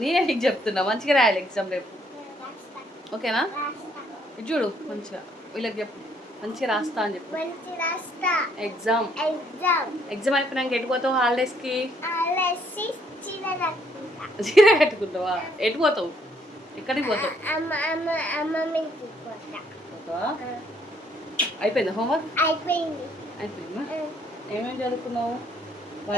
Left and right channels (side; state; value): both; normal; correlation 0.68